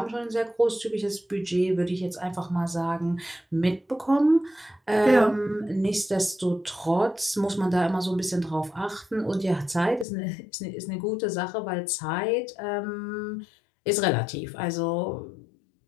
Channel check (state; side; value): drops out; right; at 10.1 s